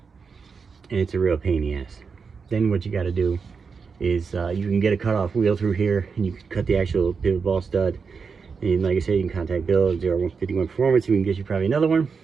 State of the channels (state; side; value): quieter; left; 5.4 dB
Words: And it's a real pain in the ass. Then what you got to do is you can get a cutoff wheel through here and you can cut the actual pivot ball stud. And like I said, you can contact Bill at ZR51 Performance. We can get you probably another one.